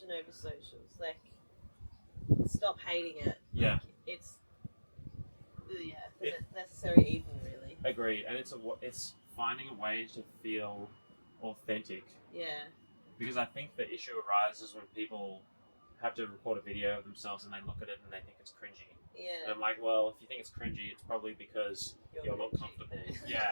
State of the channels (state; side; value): inverted; both; correlation -1.00